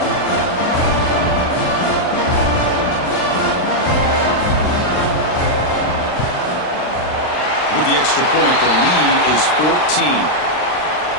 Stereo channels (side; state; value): right; late; 39 ms